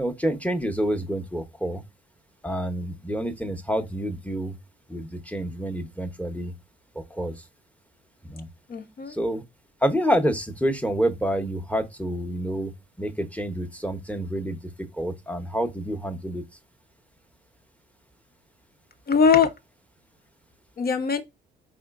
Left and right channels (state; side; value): normal; both; correlation 0.57